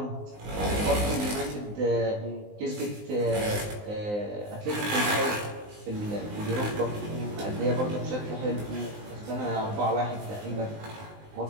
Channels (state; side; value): late; left; 19 ms